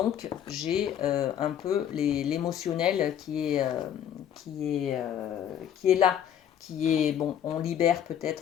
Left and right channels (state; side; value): quieter; right; 9.6 dB